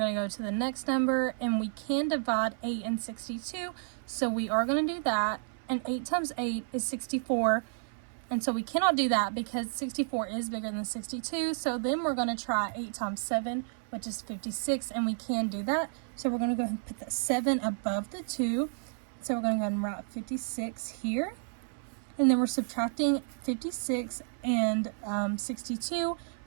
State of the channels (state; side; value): silent; left; 57 dB below the other